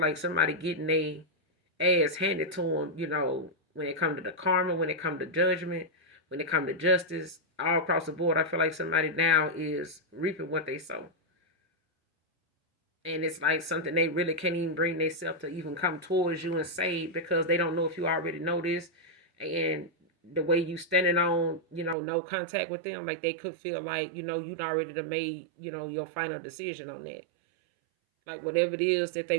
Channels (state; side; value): drops out; left; at 22.0 s